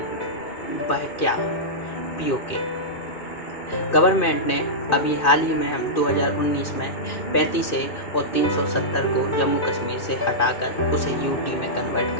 वह क्या? पीओके। गवर्नमेंट ने अभी हाल ही में हम 2019 में 35 ए और 370 को जम्मू कश्मीर से हटाकर उसे यूटी में कन्वर्ट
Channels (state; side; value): late; right; 2.6 ms